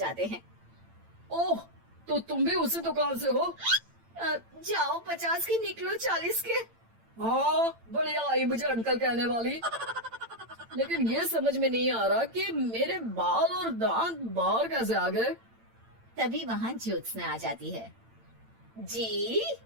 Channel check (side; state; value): left; late; 8.9 ms